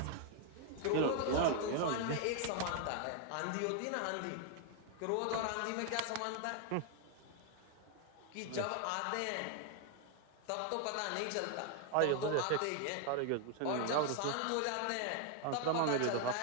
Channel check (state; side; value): different; both; correlation 0.00